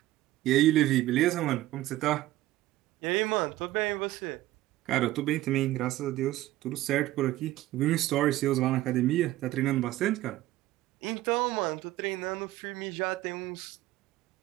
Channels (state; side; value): quieter; left; 15.8 dB